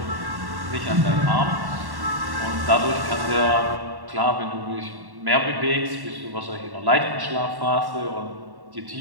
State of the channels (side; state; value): left; late; 1.1 ms